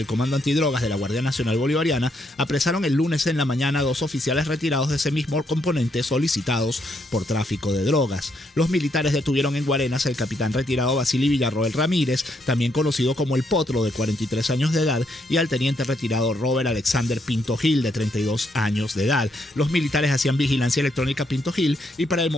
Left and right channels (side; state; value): both; normal; correlation 0.75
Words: Comando Antidrogas de la Guardia Nacional Bolivariana apresaron el lunes en la mañana a 2 oficiales retirados de ese mismo componente solicitados por tráfico de drogas. Los militares detuvieron en Guarenas al capitán retirado Vasily Villarroel Ramírez, también conocido como El Potro, de 43 años de edad, y al teniente retirado Robert Alexander Pinto Gil, de 32 años de edad. Los militares hacían vigilancia electrónica a Pinto Gil y para el